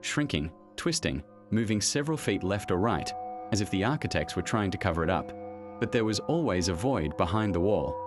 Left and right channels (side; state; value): both; identical; correlation 1.00